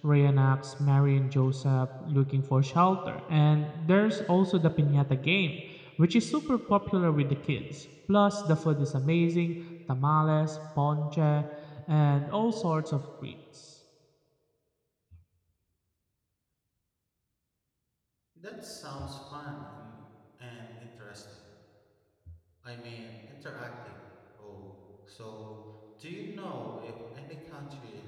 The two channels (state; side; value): identical; both; correlation 1.00